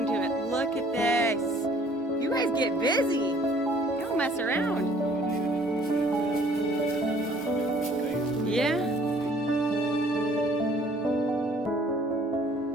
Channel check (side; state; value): both; normal; correlation 0.57